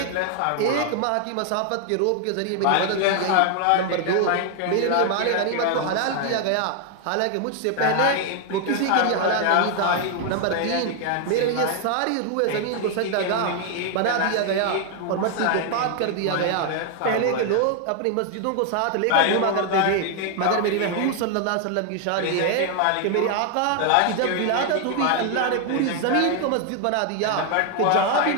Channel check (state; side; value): different; both; correlation 0.00